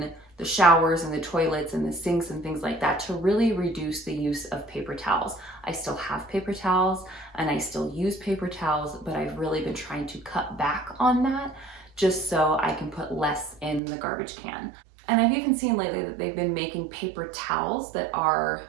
the showers and the toilets and the sinks and things like that to really reduce the use of paper towels. I still have paper towels and I still use paper towels, but I've really been trying to cut back on that just so I can put less in the garbage can. And I've even seen lately that they've been making paper towels that are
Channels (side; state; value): left; drops out; at 13.8 s